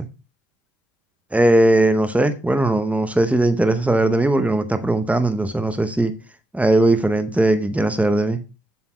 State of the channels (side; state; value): both; normal; correlation 0.87